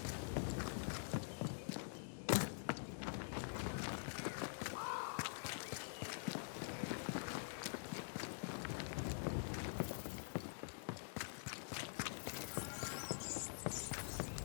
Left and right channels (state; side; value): silent; right; digital silence